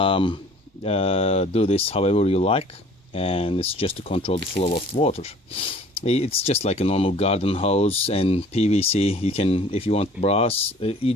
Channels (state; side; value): normal; both; correlation 0.51